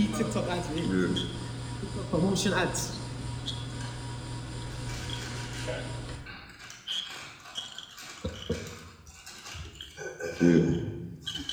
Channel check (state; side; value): identical; both; correlation 1.00